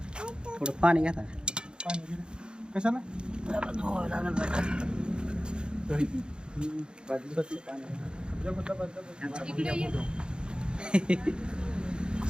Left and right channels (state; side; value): late; left; 0.050 ms